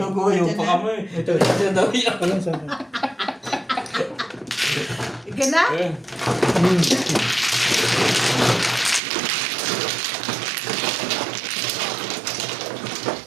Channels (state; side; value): drops out; left; at 9.0 s